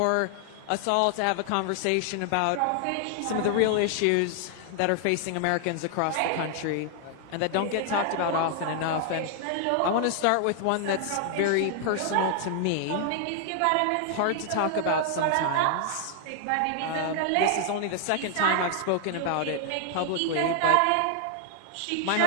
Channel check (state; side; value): different; both; correlation 0.00